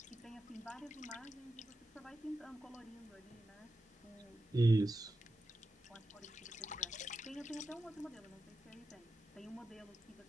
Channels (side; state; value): both; normal; correlation 0.90